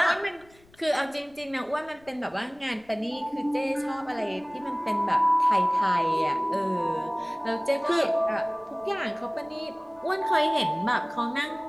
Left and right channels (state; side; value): noise; left; rumble, 29 dB below the sound